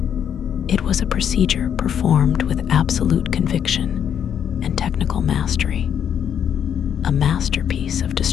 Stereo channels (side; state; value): right; quieter; 8.7 dB